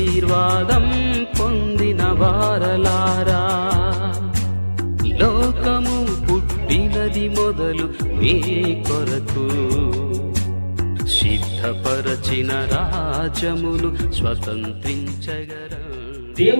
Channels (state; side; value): inverted; both; correlation -1.00